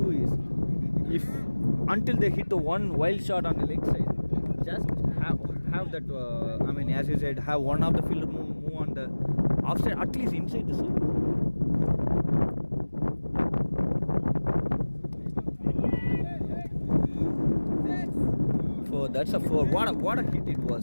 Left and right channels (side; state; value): both; inverted; correlation -1.00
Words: is, if until they hit the one wild shot on the leg side, just have that. I mean, as you said, have one of the fielder move on the offside, at least inside the circle. So that's a 4. What a hit it